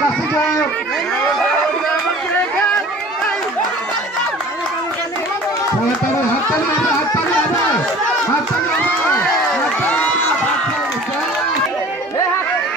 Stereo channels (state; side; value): normal; both; correlation 0.45